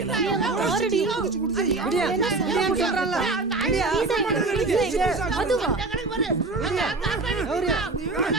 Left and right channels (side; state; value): left; quieter; 3.4 dB